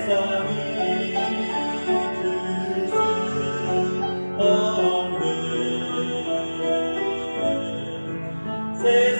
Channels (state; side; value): inverted; both; correlation -1.00